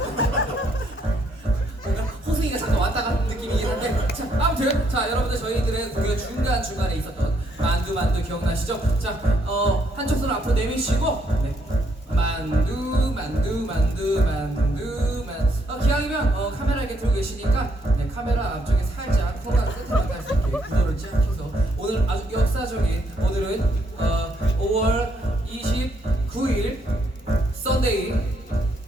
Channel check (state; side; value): normal; both; correlation 0.72